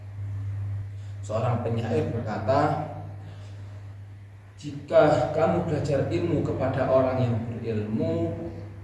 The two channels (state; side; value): identical; both; correlation 1.00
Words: Seorang penyair berkata, jika kamu belajar ilmu kepada orang yang berilmu